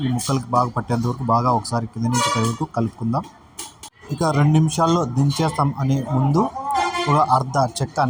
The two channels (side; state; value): both; identical; correlation 1.00